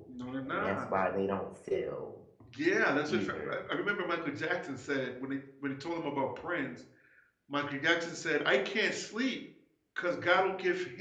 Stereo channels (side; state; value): both; identical; correlation 1.00